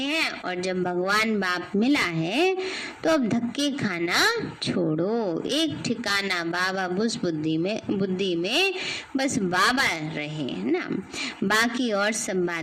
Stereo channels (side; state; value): both; identical; correlation 1.00